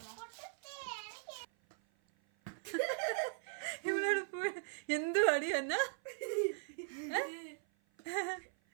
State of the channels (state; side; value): silent; left; 52 dB below the other